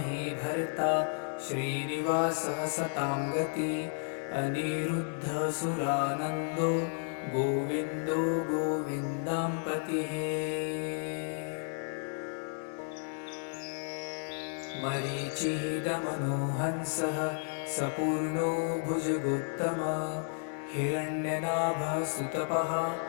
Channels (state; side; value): silent; right; 56 dB below the other